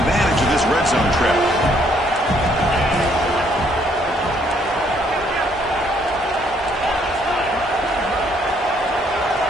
of this red zone trip.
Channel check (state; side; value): normal; both; correlation 0.67